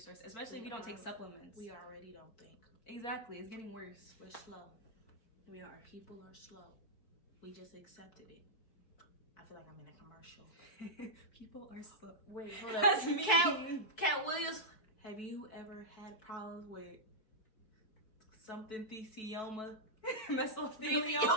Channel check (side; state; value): right; late; 4.6 ms